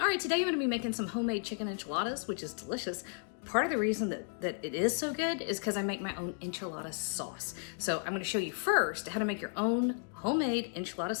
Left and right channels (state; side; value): silent; right; 55 dB below the other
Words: right, today I'm gonna be making some homemade chicken enchiladas, which is delicious. Part of the reason that it is so good is because I make my own enchilada sauce. So I'm gonna show you first how to make your own homemade enchilada